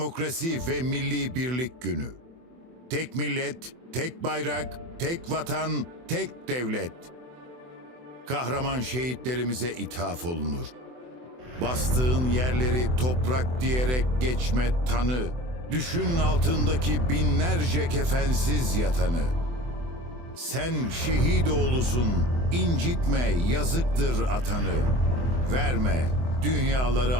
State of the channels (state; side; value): late; left; 24 ms